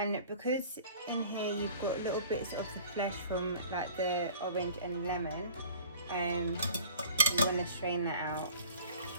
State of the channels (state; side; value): inverted; both; correlation -0.46